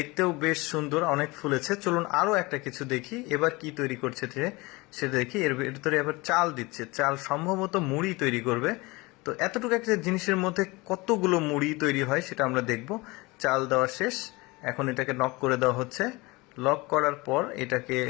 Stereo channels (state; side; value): quieter; right; 23.6 dB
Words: বেশ সুন্দর, অনেক ফুলেছে। চলুন আরো একটা কিছু দেখি, এবার কি তৈরি করছে সেটা দেখি। এর ভিতরে এবার চাল দিচ্ছে, চাল সম্ভবত মুড়ি তৈরি করবে। তো এতটুকু একটা জিনিসের মধ্যে কতগুলো মুড়ি তৈরি হয় সেটা আমরা দেখব। চাল দেওয়া শেষ, এখন এটাকে নক করে দেওয়া হচ্ছে। লক করার পর এটাকে